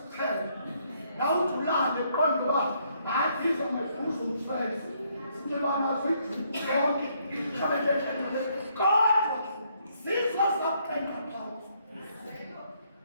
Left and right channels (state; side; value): inverted; both; correlation -0.71